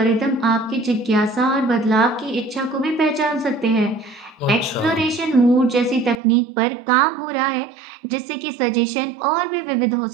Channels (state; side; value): drops out; left; at 6.2 s